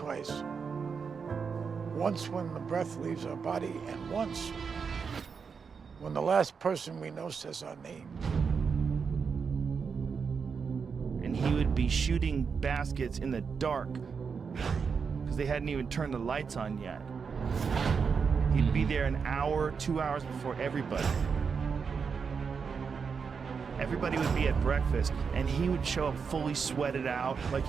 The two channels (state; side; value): quieter; left; 5.8 dB